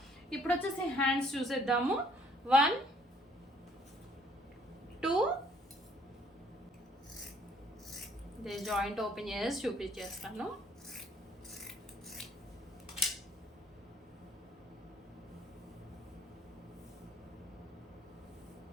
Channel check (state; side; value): normal; both; correlation 0.62